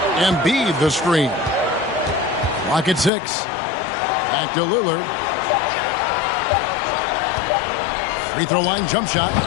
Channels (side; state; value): right; drops out; at 3.1 s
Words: Embiid the screen. Clock at 6. Back to Lillard. Free throw line jump shot.